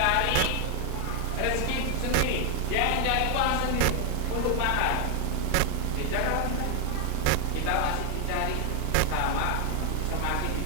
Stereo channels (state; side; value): different; both; correlation 0.00